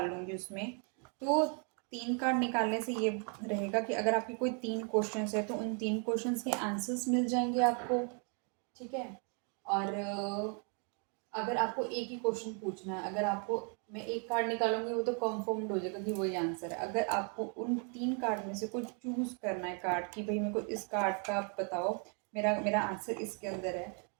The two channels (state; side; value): quieter; left; 39.1 dB